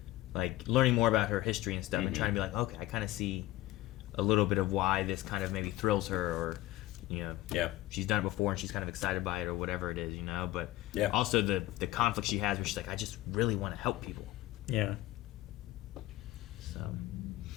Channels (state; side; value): quieter; right; 16.5 dB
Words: like learning more about her history and stuff, and trying to be like, okay, I kind of see a little bit of why this kind of maybe thrills her, or she's done it before and she's kind of excited by it, or whatever it is, but also the conflict she has where she's like, I just really want to help people. Yeah. So,